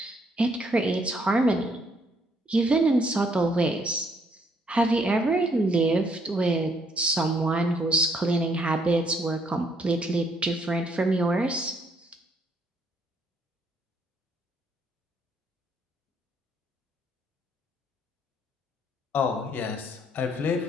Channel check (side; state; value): both; normal; correlation 0.69